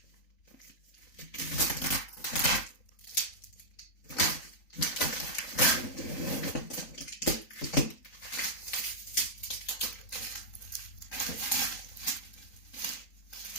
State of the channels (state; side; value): late; right; 3.9 ms